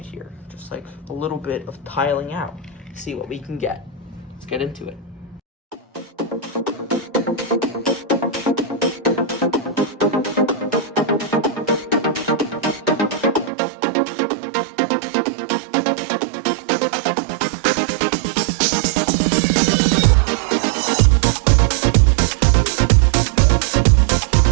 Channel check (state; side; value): drops out; left; at 13.5 s